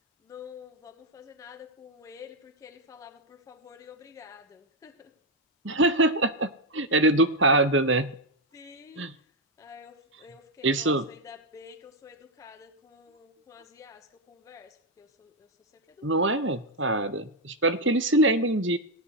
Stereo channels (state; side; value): normal; both; correlation 0.03